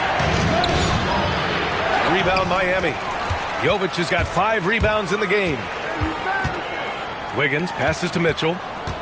Rebound Miami. Jovic has got 5 rebounds in the game. Wiggins passes to Mitchell.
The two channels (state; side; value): identical; both; correlation 1.00